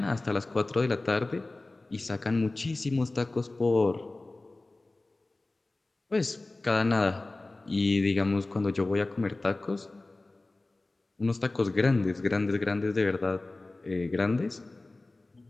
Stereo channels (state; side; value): quieter; right; 3.0 dB